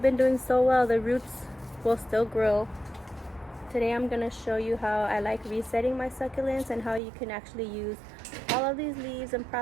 been doing so well. The roots will still grow. Today I'm going to show you how I like resetting my succulents and how you can actually use all of these leaves and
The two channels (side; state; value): left; drops out; at 7.0 s